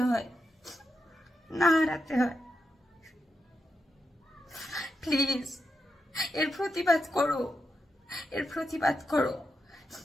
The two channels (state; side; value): normal; both; correlation 0.86